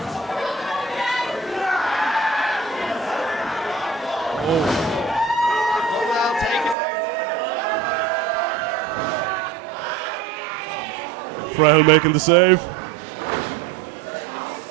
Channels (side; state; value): left; drops out; at 6.8 s